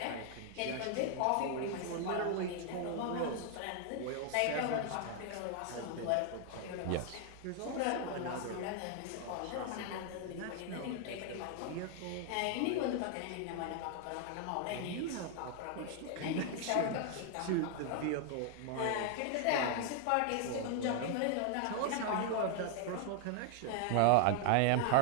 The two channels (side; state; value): both; different; correlation 0.00